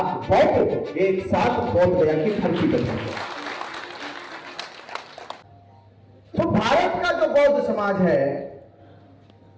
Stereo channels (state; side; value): identical; both; correlation 1.00